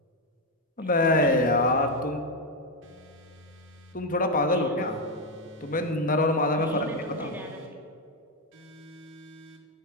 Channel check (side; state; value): both; normal; correlation 0.05